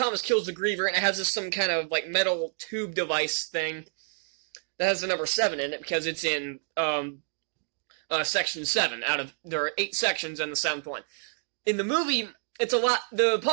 kills the Griever, and it has some kind of like metal tube device thing that has the number 7 in it, because it's in section 7 there are 8 sections and the 7th one. In the movie, the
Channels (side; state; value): left; silent; digital silence